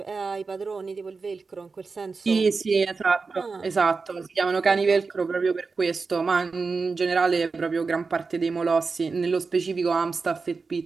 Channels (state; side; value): quieter; left; 4.5 dB